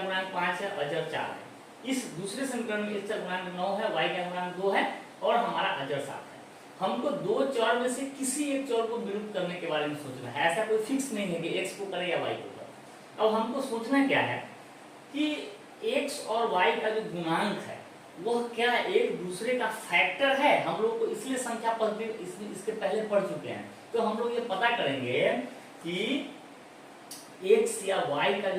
5 है, अचर 4 है। इस दूसरे समीकरण में x का गुणांक 9 है, y का गुणांक 2 है और हमारा अचर 7 है। हमको 2 चर में से किसी एक चर को विलुप्त करने के बारे में सोचना है। ऐसा कोई फिक्स नहीं है कि x को करे या y को करे। अब हमको सोचना क्या है कि x और y का जो गुणांक है वह क्या एक दूसरे का फैक्टर है। हम लोग को इसलिए संख्या पद्धति इसके पहले पढ़ चुके हैं, तो हम लोग ये पता करेंगे कि x या y का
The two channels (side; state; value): both; identical; correlation 1.00